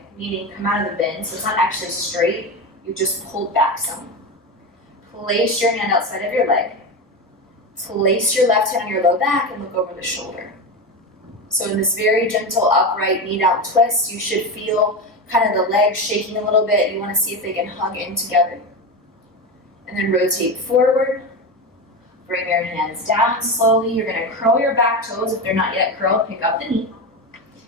meaning come out of the bend, so it's not actually straight, you just pulled back some. Place your hand outside of your leg. Place your left hand on your low back and look over the shoulder. So in this very gentle upright knee down twist, you should feel kind of the legs shaking a little bit. You want to see if they can hug in together. And then rotate forward. Bring your hands down slowly. You're going to curl your back toes. If they're not yet curled, pick up the knee.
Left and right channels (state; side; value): normal; both; correlation 0.19